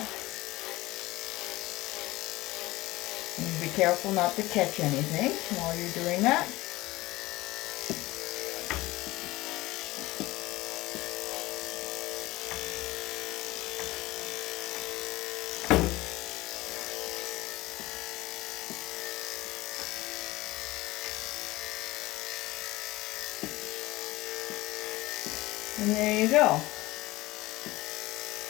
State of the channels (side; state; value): right; quieter; 19.1 dB